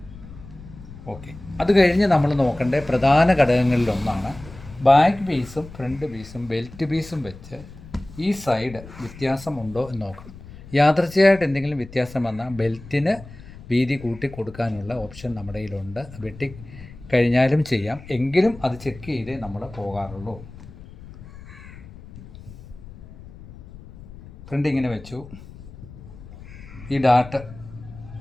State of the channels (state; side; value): noise; left; rumble, 17 dB below the sound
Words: ഓക്കെ, അത് കഴിഞ്ഞ് നമ്മൾ നോക്കേണ്ട പ്രധാന ഘടകങ്ങളിലൊന്നാണ് ബാക്ക് പീസും ഫ്രണ്ട് പീസും ബെൽറ്റ് പീസും വെച്ച് ഈ സൈഡ് വ്യത്യാസമുണ്ടോ എന്ന് നോക്കണം. യാദൃച്ഛികമായിട്ട് എന്തെങ്കിലും വ്യത്യാസം വന്നാൽ ബെൽറ്റിന് വീതി കൂട്ടി കൊടുക്കാനുള്ള ഓപ്ഷൻ നമ്മുടെ കയ്യിലുണ്ട്. വെട്ടി കഴിഞ്ഞാലും ചെയ്യാം, എങ്കിലും അത് ചെക്ക് ചെയ്തേ നമ്മൾ പോകാറുള്ളൂ. ഫ്രണ്ട് ഇങ്ങനെ വെച്ചു. ഈ ഡാട്ട്